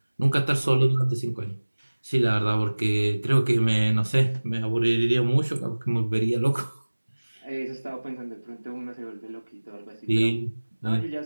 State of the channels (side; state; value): both; inverted; correlation -1.00